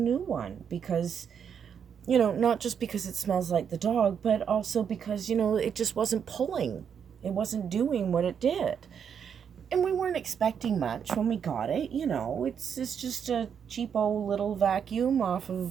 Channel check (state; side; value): quieter; left; 7.6 dB